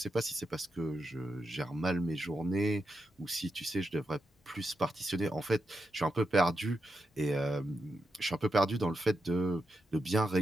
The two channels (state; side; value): normal; both; correlation 0.86